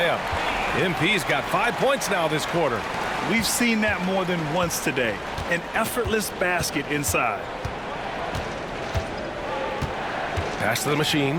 MP's got 5 points now this quarter. We've seen that more than once today. An effortless basket inside. Pass to the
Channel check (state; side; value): identical; both; correlation 1.00